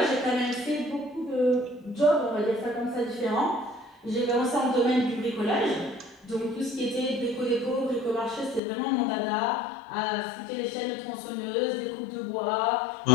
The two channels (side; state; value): right; drops out; at 8.6 s